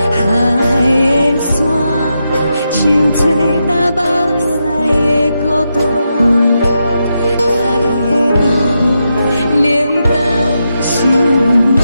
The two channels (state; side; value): inverted; both; correlation -0.85